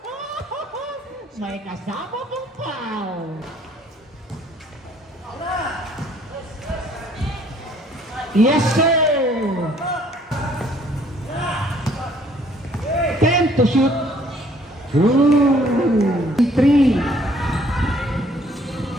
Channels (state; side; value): normal; both; correlation 0.61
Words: May kasama pong foul. Yes, sir. 10 to shoot. 3.